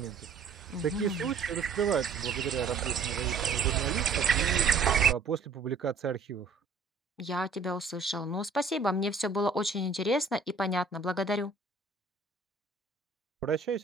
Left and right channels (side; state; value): left; quieter; 4.4 dB